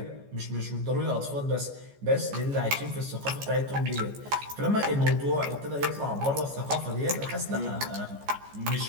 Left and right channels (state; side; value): late; left; 14 ms